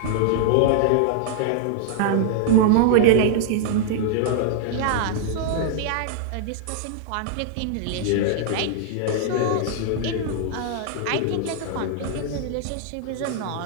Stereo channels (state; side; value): different; both; correlation 0.00